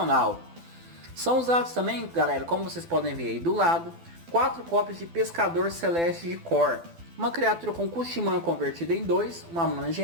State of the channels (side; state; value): left; late; 12 ms